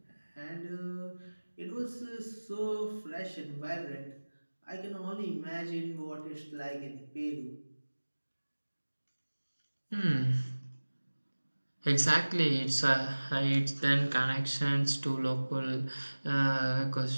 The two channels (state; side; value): inverted; both; correlation -1.00